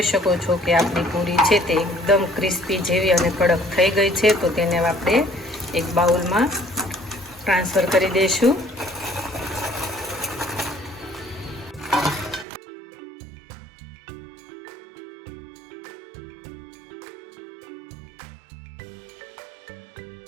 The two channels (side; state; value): left; drops out; at 12.5 s